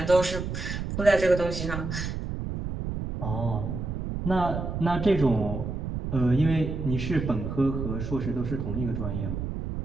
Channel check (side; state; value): right; noise; rumble, 4 dB below the sound